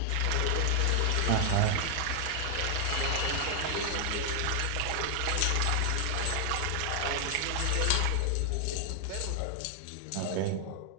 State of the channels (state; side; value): different; both; correlation 0.00